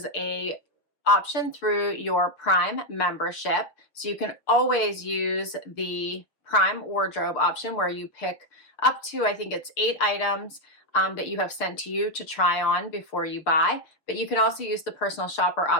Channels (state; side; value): late; right; 6.6 ms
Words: a option through your Prime membership. So you can always use the Prime wardrobe option where you pick up to, I think it's 8 items that you have sent to you to try on before you buy. But you can also use the personal shopper